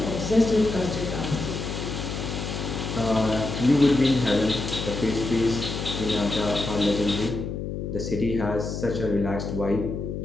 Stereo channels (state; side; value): noise; left; hum, 5 dB below the sound